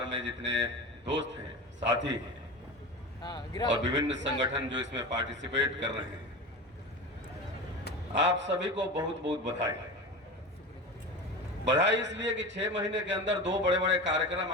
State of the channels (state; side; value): normal; both; correlation 0.28